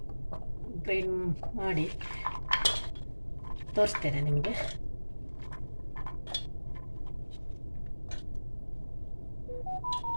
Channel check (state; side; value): inverted; both; correlation -1.00